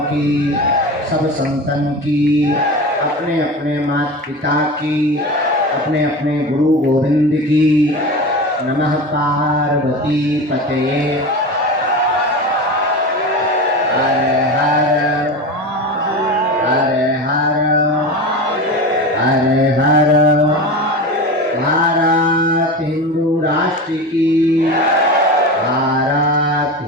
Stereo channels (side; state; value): both; normal; correlation 0.27